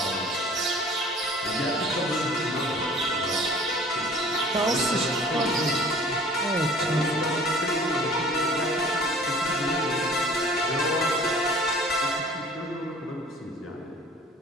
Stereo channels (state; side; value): normal; both; correlation 0.48